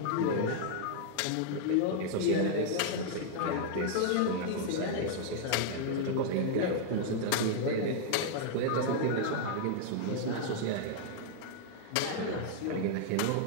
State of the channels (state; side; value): different; both; correlation -0.01